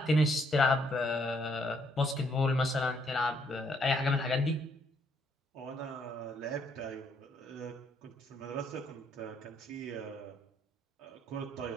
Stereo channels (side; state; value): both; normal; correlation 0.70